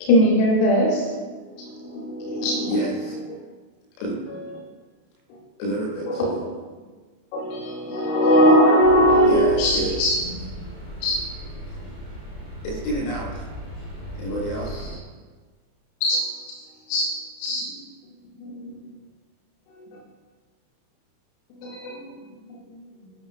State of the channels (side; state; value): right; late; 32 ms